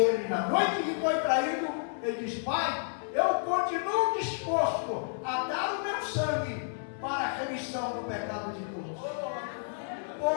na noite que foi traído, ele diz: Pai, eu continuo disposto a dar o meu sangue para a remissão do pecado de todos.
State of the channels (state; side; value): silent; right; 57 dB below the other